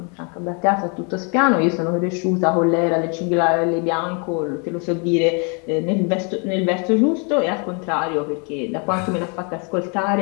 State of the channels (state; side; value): quieter; right; 35.9 dB